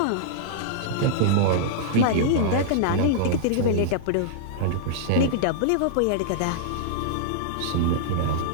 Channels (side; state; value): both; different; correlation -0.01